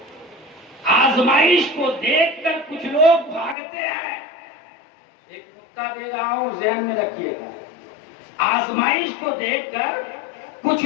آزمائش کو دیکھ کر کچھ لوگ بھاگتے ہیں، ایک نقطہ دے رہا ہوں ذہن میں رکھیے گا، آزمائش کو دیکھ کر کچھ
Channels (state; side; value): drops out; right; at 3.6 s